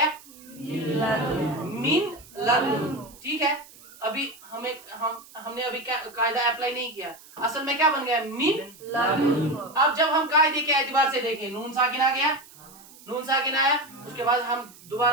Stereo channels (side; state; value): right; noise; hiss, 22 dB below the sound